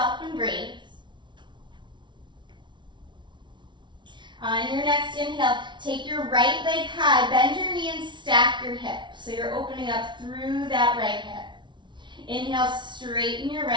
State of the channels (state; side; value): late; left; 0.23 ms